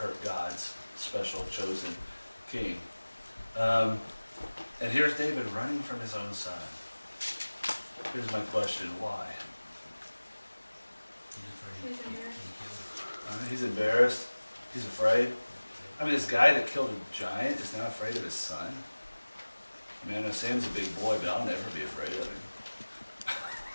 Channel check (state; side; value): inverted; both; correlation -1.00